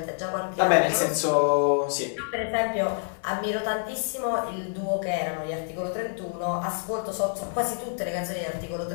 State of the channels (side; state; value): right; silent; 60 dB below the other